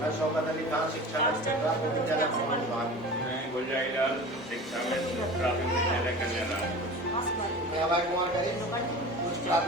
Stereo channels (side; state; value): both; normal; correlation 0.36